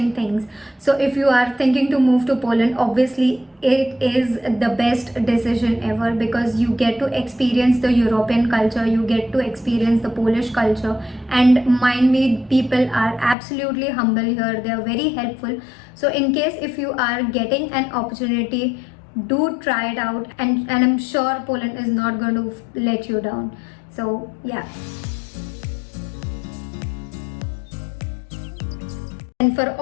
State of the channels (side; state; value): right; drops out; at 13.4 s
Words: things. So if you are thinking to move to Poland, obviously it is the best decision ever, because you get to experience the European culture, you get to experience the Polish culture, and mind me, people are absolutely humble here. They are very helpful. So in case if you are getting an opportunity, do try it out, and I'm sure Poland is not going to let you down. So yeah. And for